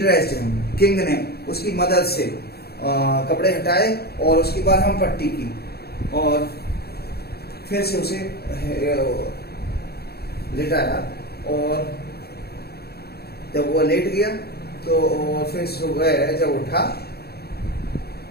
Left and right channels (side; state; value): right; late; 0.46 ms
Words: him. King ने उसकी मदद से कपड़े हटाए और उसकी बरहम पट्टी की और फिर से उसे लिटाया। और जब वो लेट गया तो फिर सुबह जब उठा